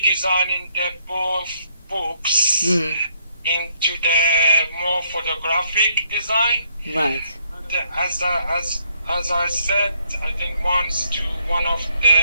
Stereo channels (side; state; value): both; inverted; correlation -0.70